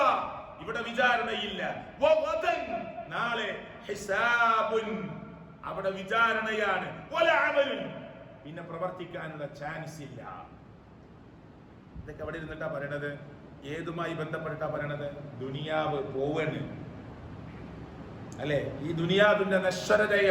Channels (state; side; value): identical; both; correlation 1.00